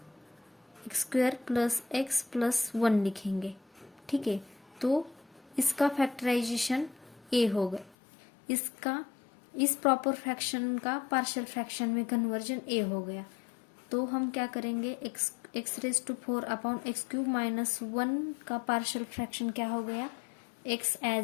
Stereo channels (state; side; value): drops out; right; at 8.0 s